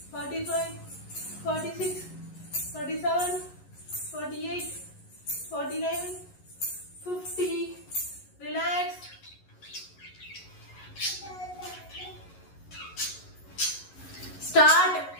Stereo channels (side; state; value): right; late; 11 ms